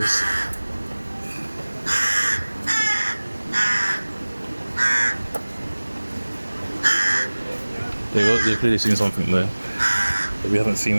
They've clearly seen something there that we haven't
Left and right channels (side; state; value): both; inverted; correlation -1.00